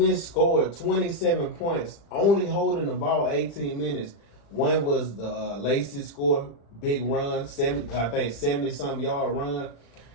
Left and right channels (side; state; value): right; late; 35 ms